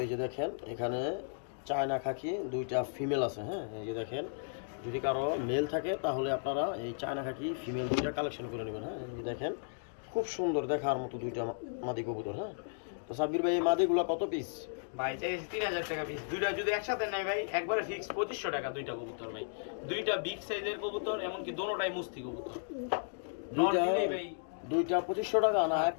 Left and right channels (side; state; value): right; silent; digital silence